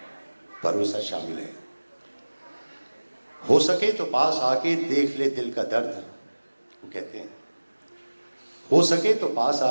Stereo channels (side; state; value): both; inverted; correlation -1.00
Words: भरोसा शामिल है। हो सके तो पास आके देख ले दिल का दर्द, वो कहते हैं। हो सके तो पास